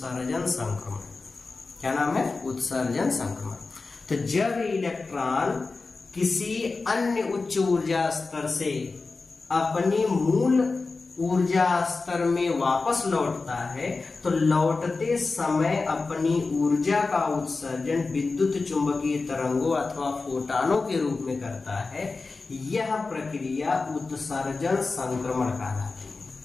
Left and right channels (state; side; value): quieter; right; 3.9 dB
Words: संक्रमण। क्या नाम है? उत्सर्जन संक्रमण। तो जब इलेक्ट्रॉन किसी अन्य उच्च ऊर्जा स्तर से अपनी मूल ऊर्जा स्तर में वापस लौटता है तो लौटते समय अपनी ऊर्जा का उत्सर्जन विद्युत चुंबकीय तरंगों अथवा फोटॉनों के रूप में करता है। यह प्रक्रिया उत्सर्जन संक्रमण कहलाती है।